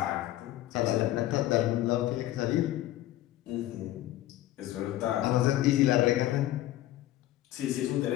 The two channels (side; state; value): right; quieter; 14.7 dB